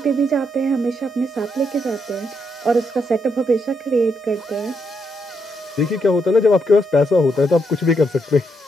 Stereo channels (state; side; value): normal; both; correlation 0.78